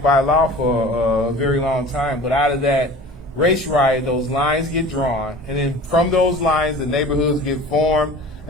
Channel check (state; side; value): normal; both; correlation 0.40